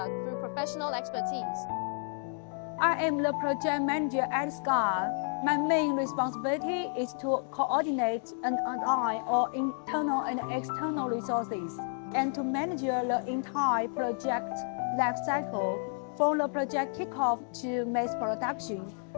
through professional expertise. I am the project manager at SCUD. My main responsibility is to coordinate and align all internal and external resources and to manage the entire project life cycle from the project kickoff to mass production.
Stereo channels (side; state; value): right; silent; 57 dB below the other